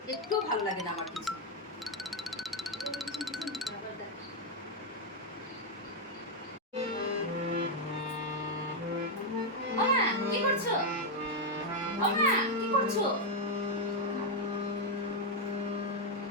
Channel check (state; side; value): normal; both; correlation 0.01